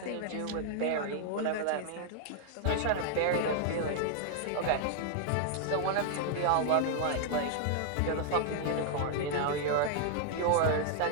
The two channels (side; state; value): both; different; correlation 0.00